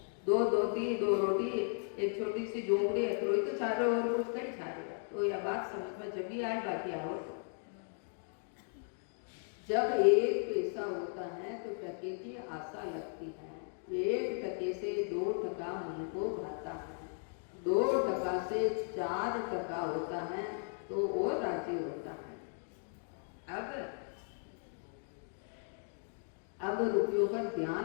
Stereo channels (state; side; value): silent; right; 54 dB below the other